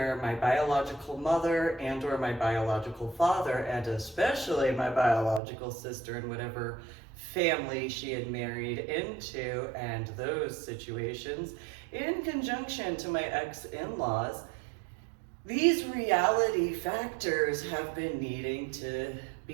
my biological mother and or my biological father, and especially my biological sister and whatever family she had married into, and those situations, in conjunction to my ex-in-laws, these reality factors have been needing to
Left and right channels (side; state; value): left; drops out; at 5.4 s